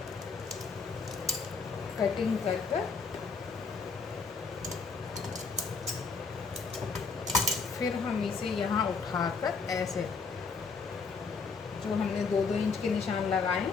कटिंग कर कर फिर हम इसे यहाँ उठाकर ऐसे जो हमने 2-2 इंच के निशान लगाए हैं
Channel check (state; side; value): quieter; right; 4.8 dB